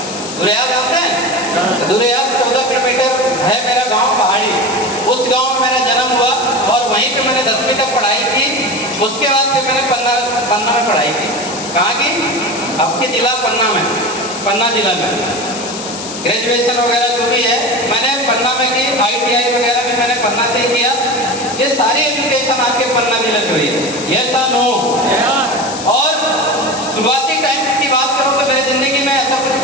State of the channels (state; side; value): noise; left; hiss, 9 dB below the sound